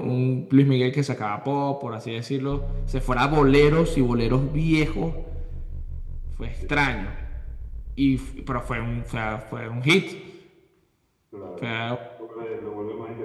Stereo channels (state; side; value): identical; both; correlation 1.00